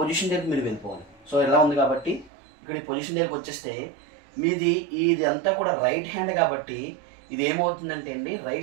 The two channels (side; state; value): left; drops out; at 2.3 s